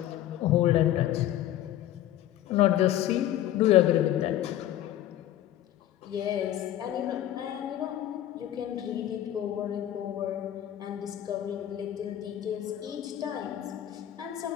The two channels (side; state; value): right; quieter; 12.5 dB